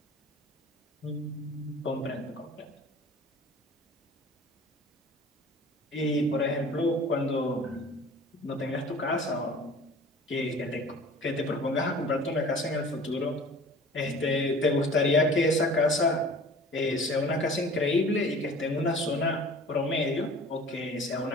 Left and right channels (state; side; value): normal; both; correlation 0.44